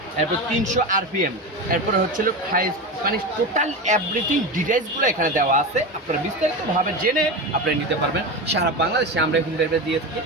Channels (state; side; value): normal; both; correlation 0.22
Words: এরপর 300 আরপিএম। এরপরে হাই, মানে টোটাল এভরিথিং ডিটেইলসগুলো এখানে দেওয়া আছে। আপনারা বিস্তারিতভাবে জেনে আপনারা নিতে পারবেন। সারা বাংলাদেশে আমরা হোম ডেলিভারি দিয়ে থাকি,